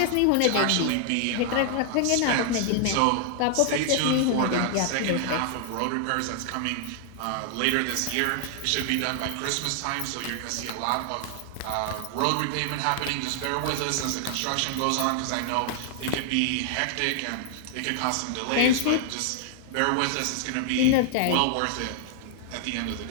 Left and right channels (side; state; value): both; different; correlation 0.00